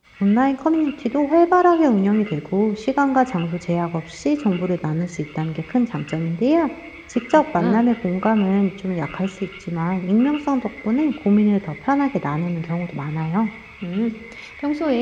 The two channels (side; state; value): both; identical; correlation 1.00